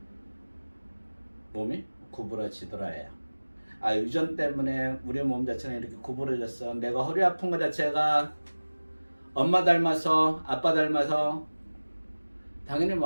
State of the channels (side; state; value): both; inverted; correlation -1.00